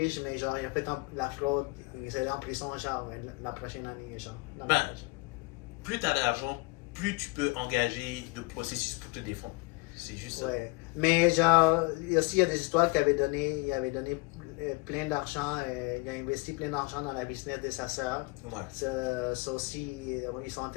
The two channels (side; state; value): right; quieter; 25.7 dB